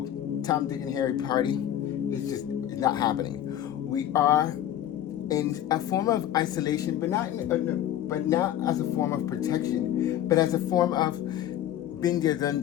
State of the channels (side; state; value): right; quieter; 11.7 dB